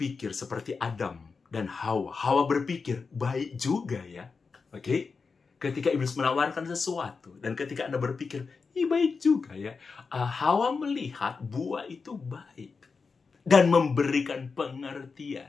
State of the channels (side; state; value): right; quieter; 4.8 dB